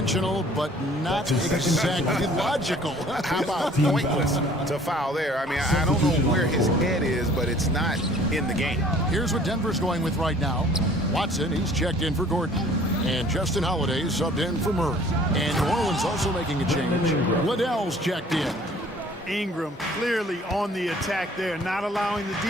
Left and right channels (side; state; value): both; normal; correlation 0.54